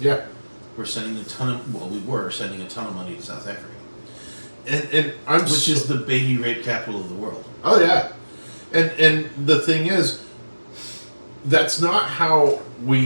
We were sending a ton of money to South Africa, And I'm which is the baby rape capital of the world. oh yeah, and the thing is, that's not how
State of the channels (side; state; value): both; inverted; correlation -1.00